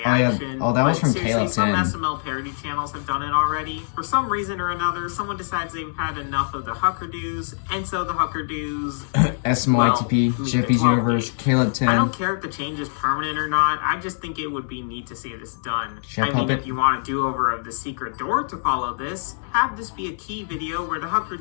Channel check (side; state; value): right; silent; digital silence